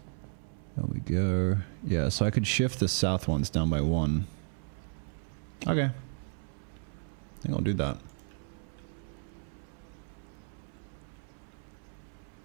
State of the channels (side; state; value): left; silent; 55 dB below the other